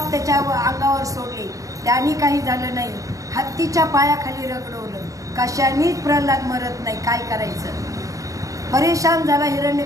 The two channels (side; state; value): left; late; 0.16 ms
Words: त्याच्या अंगावर सोडले, त्याने काही झालं नाही. हत्तीच्या पायाखाली रगडवलं, कशानेच प्रल्हाद मरत नाही. काय करायचं. परेशान झाला